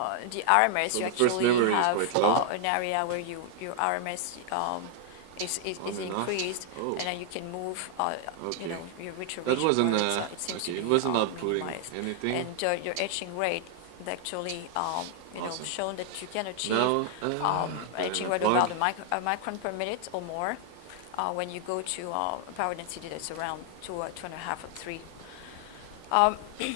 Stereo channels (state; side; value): different; both; correlation 0.00